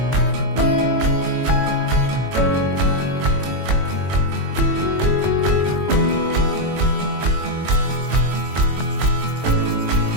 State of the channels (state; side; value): late; left; 22 ms